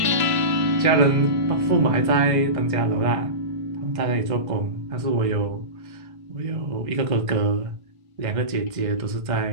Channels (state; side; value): late; left; 1.5 ms